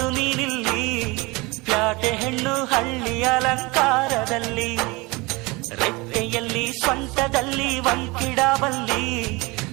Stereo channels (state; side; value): quieter; left; 24.5 dB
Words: ನೀನಿಲ್ಲಿ, ಪ್ಯಾಟೆ ಹೆಣ್ಣು ಹಳ್ಳಿ ಅಲಂಕಾರದಲ್ಲಿ, ರೆಟ್ಟೆಯಲ್ಲಿ ಸ್ವಂಟದಲ್ಲಿ ವಂಕಿಡಬಲ್ಲಿ,